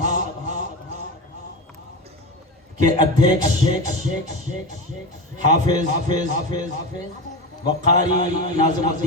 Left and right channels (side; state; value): both; normal; correlation 0.22